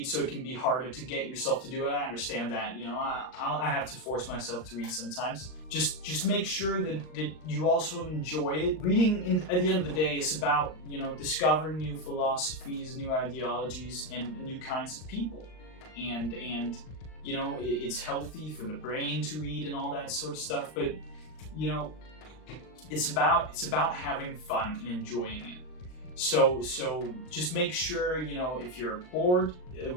so it can be harder to get yourself to do it. I understand that, you know, I have to force myself to read sometimes. Just make sure that you also enjoy it. Reading, at the end of the day, is about, you know, discovering new philosophies, new ideologies, and new kinds of people. And you know, it's healthy for the brain to read and all that sort of stuff, but, you know, it's about having fun and enjoying it. So just make sure, you know, if you're bored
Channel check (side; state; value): right; late; 39 ms